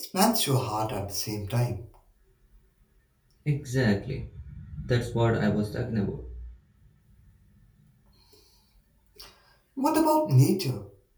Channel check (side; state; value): both; identical; correlation 1.00